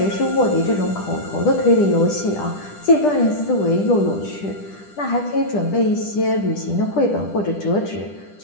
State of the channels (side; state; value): right; late; 10 ms